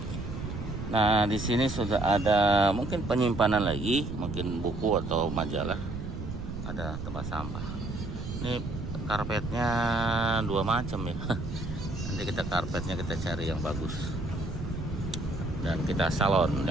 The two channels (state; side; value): noise; right; rumble, 7 dB below the sound